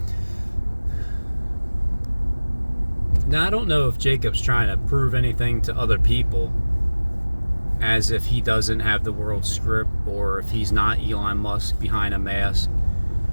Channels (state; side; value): inverted; both; correlation -1.00